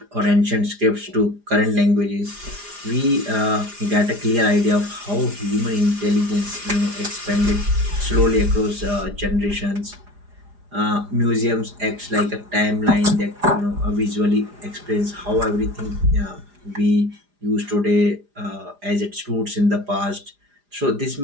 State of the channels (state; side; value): late; left; 4.9 ms